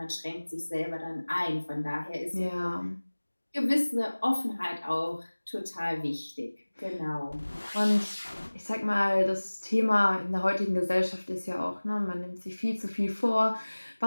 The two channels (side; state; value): both; inverted; correlation -1.00